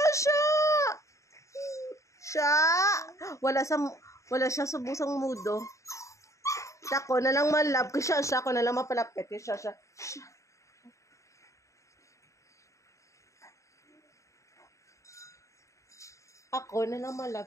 Wala siya sa busang mudo. Ako na lang malab kay Shasha. Ako na lang mapalapit kay Shasha. Ako na lang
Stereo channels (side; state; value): right; late; 0.15 ms